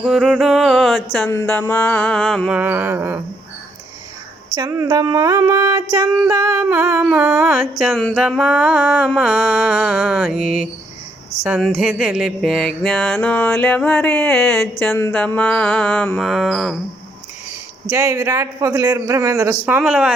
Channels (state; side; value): normal; both; correlation 0.73